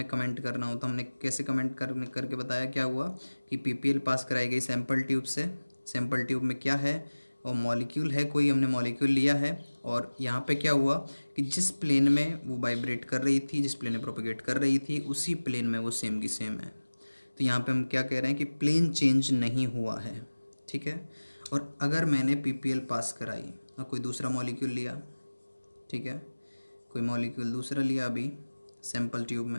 कमेंट करना हो तो हमने कैसे कमेंट करके बताया? क्या हुआ कि पीपीएल पास कराई गई सैंपल ट्यूब से। सैंपल ट्यूब में क्या है? वो मॉलिक्यूल है, कोई हमने मॉलिक्यूल लिया है, और यहाँ पे क्या हुआ कि जिस प्लेन में वो वाइब्रेट कर रही थी, जिस प्लेन में प्रोपेगेट कर रही थी, उसी प्लेन में वो सेम की सेम है। तो यहाँ पे हम क्या कह रहे हैं कि प्लेन चेंज नहीं हुआ है, ठीक है। और अगर मैंने पीपीएल पास कराई और कोई दूसरा मॉलिक्यूल लिया, ठीक है, कोई मॉलिक्यूल दूसरा लिया अभी सैंपल ट्यूब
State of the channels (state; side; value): inverted; both; correlation -1.00